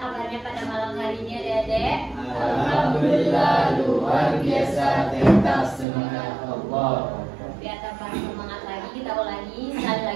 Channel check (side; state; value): left; drops out; at 5.9 s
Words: kabarnya pada malam hari ini adik-adik? Alhamdulillah luar biasa, tetap semangat Allah. Biar tambah semangat lagi, kita ulangi sekali